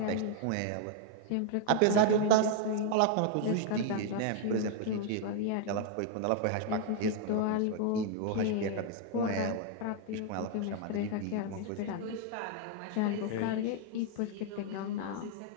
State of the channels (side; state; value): both; different; correlation 0.00